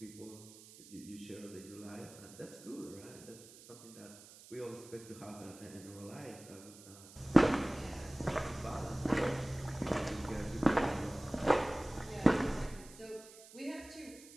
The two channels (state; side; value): noise; right; hiss, 19 dB below the sound